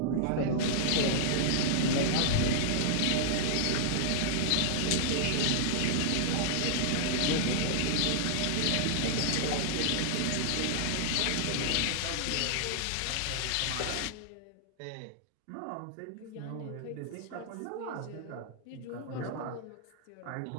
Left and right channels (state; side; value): different; both; correlation -0.01